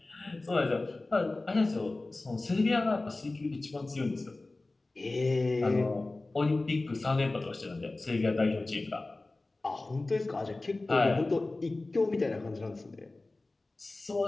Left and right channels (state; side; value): quieter; right; 3.1 dB